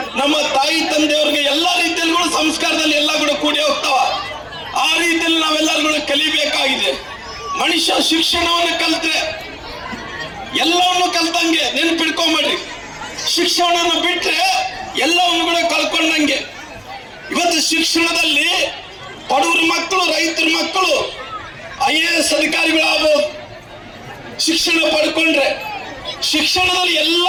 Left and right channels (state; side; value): identical; both; correlation 1.00